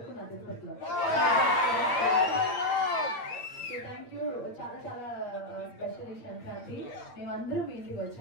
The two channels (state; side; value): late; right; 9.1 ms